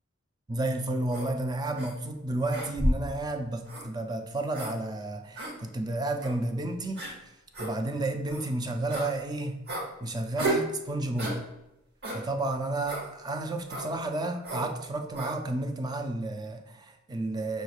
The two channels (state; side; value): normal; both; correlation 0.63